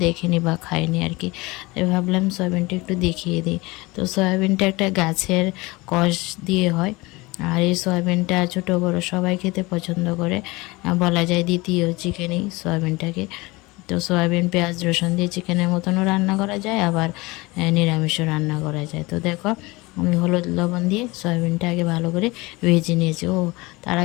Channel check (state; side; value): quieter; right; 23.0 dB